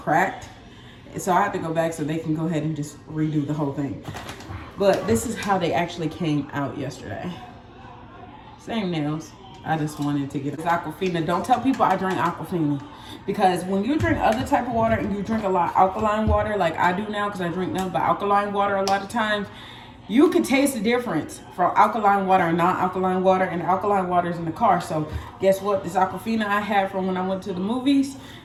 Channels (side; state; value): both; identical; correlation 1.00